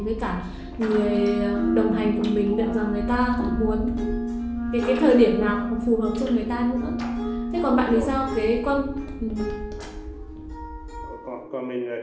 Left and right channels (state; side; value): identical; both; correlation 1.00